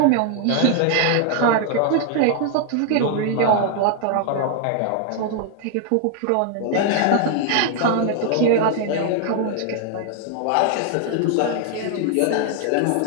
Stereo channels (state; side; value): different; both; correlation 0.00